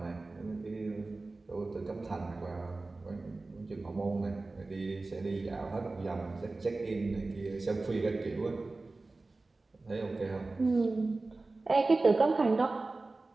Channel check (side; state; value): left; quieter; 3.3 dB